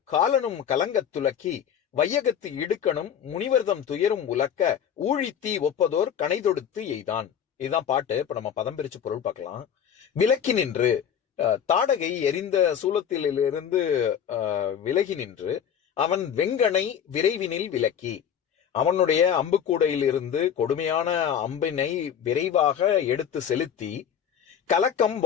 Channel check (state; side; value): quieter; right; 8.5 dB